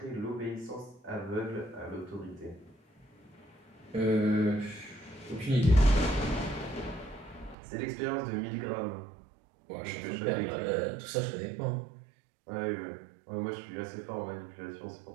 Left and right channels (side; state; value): left; drops out; at 7.6 s